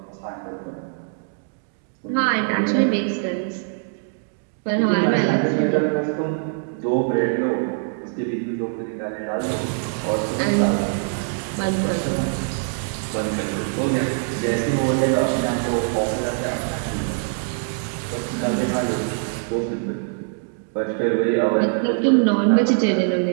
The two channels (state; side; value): silent; left; 63 dB below the other